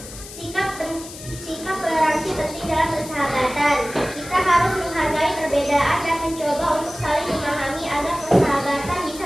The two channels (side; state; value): left; noise; hiss, 14 dB below the sound